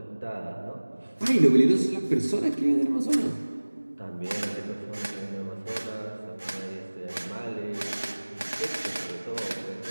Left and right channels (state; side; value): inverted; both; correlation -1.00